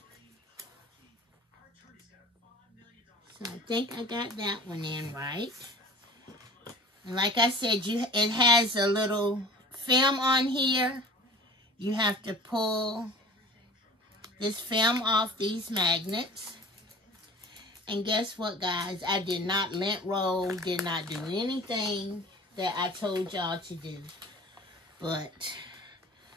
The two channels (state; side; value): normal; both; correlation 0.42